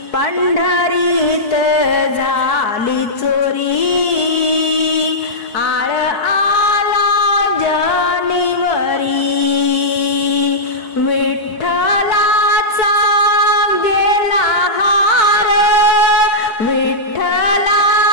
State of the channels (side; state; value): right; late; 4.7 ms